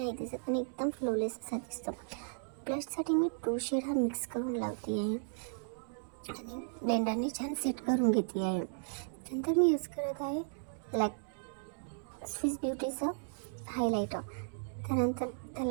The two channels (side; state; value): left; silent; digital silence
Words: दिसत आणि एकदम फ्लोलेस असा दिसतो. ब्लशसाठी मी 2 शेड हा मिक्स करून लावते आहे आणि ब्लेंडरने छान सेट करून घेते आहे. नंतर मी यूज करत आहे स्विस ब्युटीचं हायलायटर. त्यानंतर